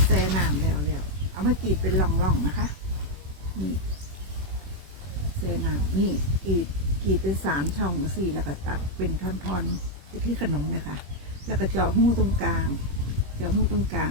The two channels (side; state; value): left; late; 21 ms